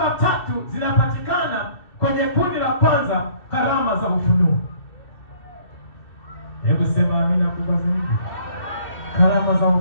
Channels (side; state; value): right; late; 2.6 ms